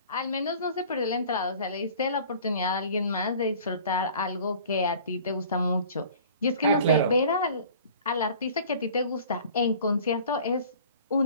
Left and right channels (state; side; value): inverted; both; correlation -0.47